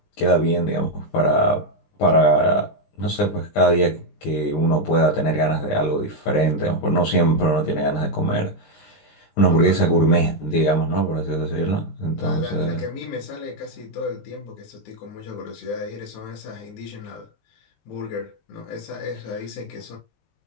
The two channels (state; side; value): late; right; 19 ms